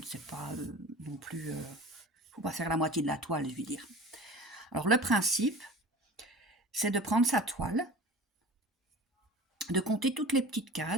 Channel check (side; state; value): both; normal; correlation 0.39